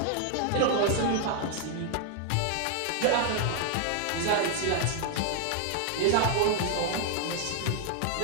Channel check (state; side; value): different; both; correlation 0.00